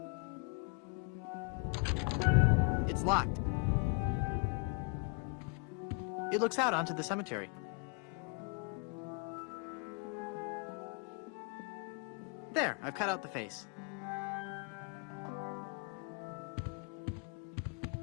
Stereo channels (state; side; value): quieter; right; 33.4 dB